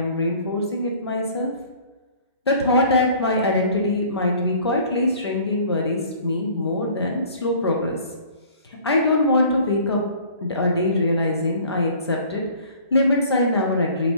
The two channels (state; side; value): inverted; both; correlation -0.51